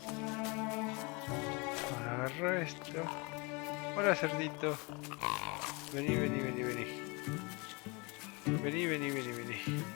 Ahora agarro esto. Hola cerdito. Vení, vení, vení, vení. Vení, vení, vení, vení.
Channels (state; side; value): quieter; right; 28.7 dB